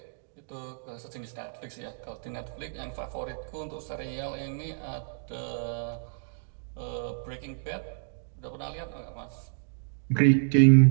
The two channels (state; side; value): silent; left; digital silence